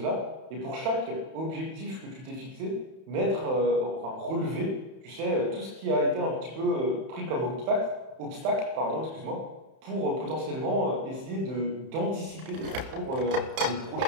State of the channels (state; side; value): late; left; 31 ms